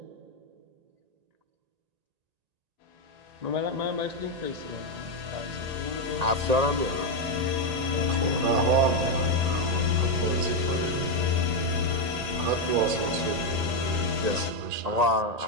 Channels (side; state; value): left; late; 1.8 ms